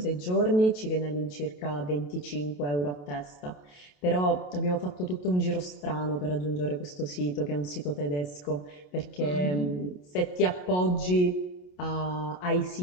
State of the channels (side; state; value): right; late; 28 ms